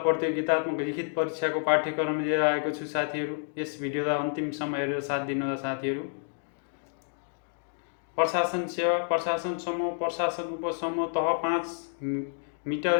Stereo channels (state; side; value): silent; right; digital silence